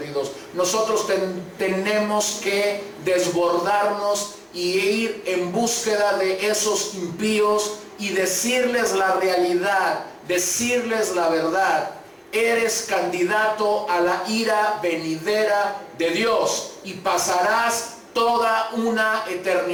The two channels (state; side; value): identical; both; correlation 1.00